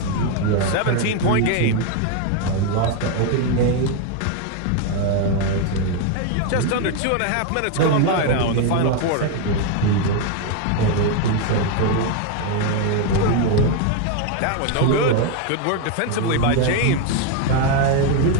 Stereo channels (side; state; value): both; different; correlation 0.01